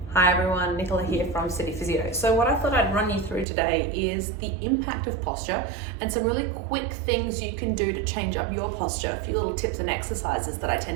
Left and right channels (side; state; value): left; drops out; at 3.5 s